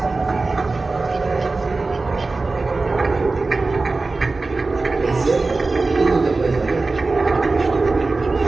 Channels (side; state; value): left; quieter; 3.6 dB